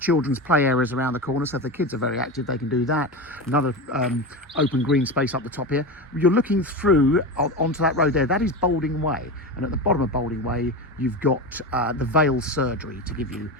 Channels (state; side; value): normal; both; correlation 0.22